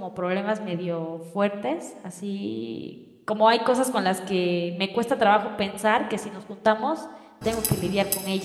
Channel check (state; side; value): identical; both; correlation 1.00